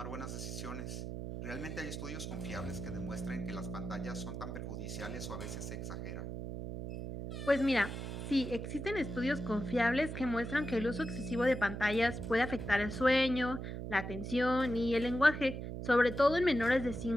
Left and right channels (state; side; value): noise; right; hum, 6 dB below the sound